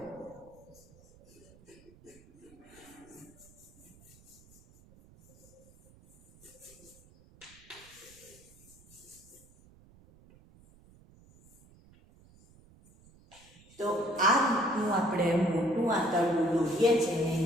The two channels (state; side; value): noise; right; rumble, 25 dB below the sound